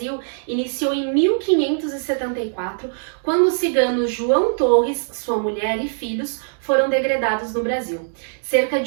iniciou em 1574, quando o cigano João Torres, sua mulher e filhos foram degredados no Brasil. Cerca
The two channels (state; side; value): silent; left; digital silence